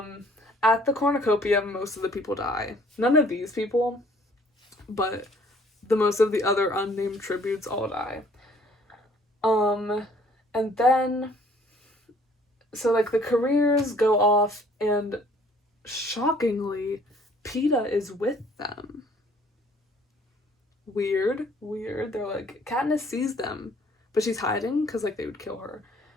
At the cornucopia, most of the people die. None of these people, but the most of the other unnamed tributes all die. And then, so like the careers go off, and shockingly, Peeta is with them. Weird. They're like, Katniss sees them, but she's hiding because like they would kill her.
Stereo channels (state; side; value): normal; both; correlation 0.58